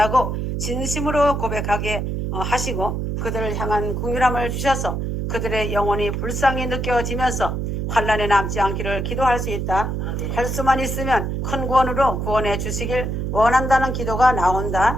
진심으로 고백하게 하시고 그들을 향한 긍휼함을 주셔서 그들의 영혼이 불쌍히 느껴지면서 환난에 남지 않기를 기도할 수 있다. 할 수만 있으면 큰 구원으로 구원해 주시길 원한다는 기도가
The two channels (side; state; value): right; noise; hum, 2 dB below the sound